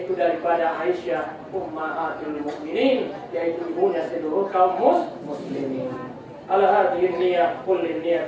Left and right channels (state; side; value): identical; both; correlation 1.00